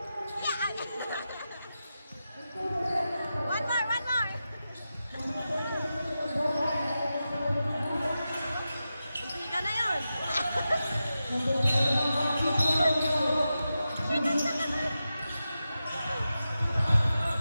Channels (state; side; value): inverted; both; correlation -0.91